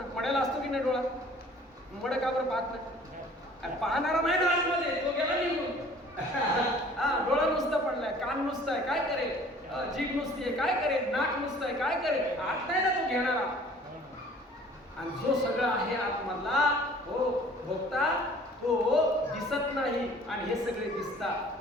मड्याला असतो की नाही डोळा? मड का बरं पाहत नाही? पाहणारा नाही ना आतमध्ये, तो गेला निघून. हा, डोळा नुसता पडलाय, कान नुसतं आहे, काय करेल? जीभ नुसती आहे, काय करेल? नाक नुसतं आहे, काय करेल? आत नाही ना तो घेणारा. आणि जो सगळं आहे आतमधला हो भोगता तो दिसत नाही आणि हे सगळे दिसतात.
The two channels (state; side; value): normal; both; correlation 0.51